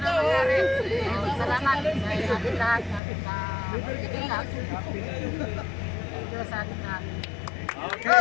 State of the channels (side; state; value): right; drops out; at 3.0 s